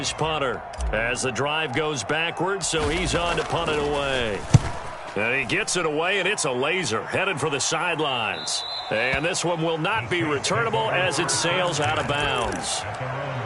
punter as the drive goes backwards, so he's on to punt it away. And he gets it away, and it's a laser headed for the sidelines. And this one will not be returnable as it sails out of bounds.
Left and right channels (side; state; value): both; identical; correlation 1.00